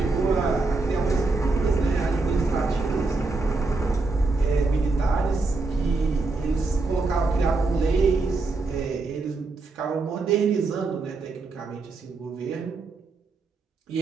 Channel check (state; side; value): quieter; left; 3.6 dB